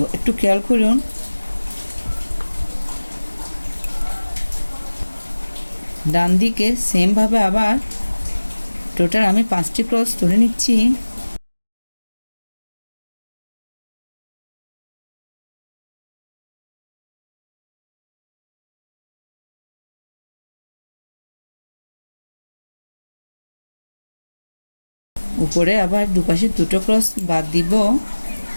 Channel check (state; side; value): inverted; both; correlation -1.00